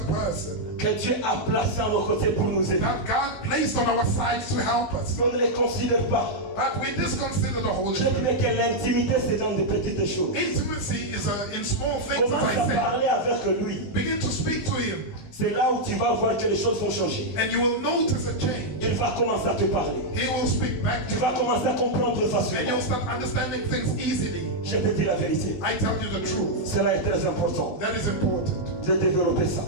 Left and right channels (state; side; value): late; right; 20 ms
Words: person que Dieu a placée à nos côtés pour nous aider. that God placed on our sides to help us. On ne les considère pas. But we disconsider the Holy Je Spirit. dirais que l'intimité, c'est dans de petites choses. Intimacy is in small things, Commence as à I parler avec lui. said. Begin to speak to Him, C'est là où tu vas voir que les choses vont changer. and you will notice a change. Il va commencer à te parler. He will speak back to Tu vas you, commencer à comprendre and facilement. you'll start understanding things easily. Je te dis la vérité. I tell you the truth. Cela est très important That is important de développer ça.